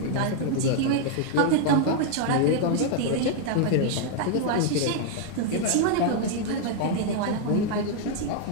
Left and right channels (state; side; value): different; both; correlation 0.00